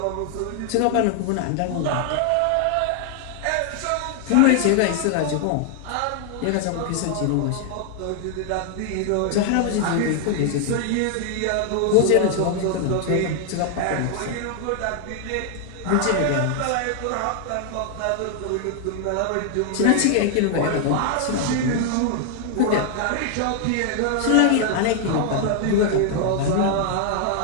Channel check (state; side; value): different; both; correlation 0.00